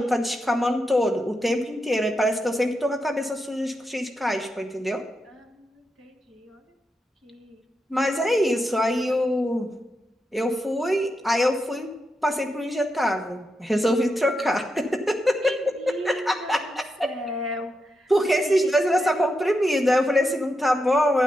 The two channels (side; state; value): both; normal; correlation 0.86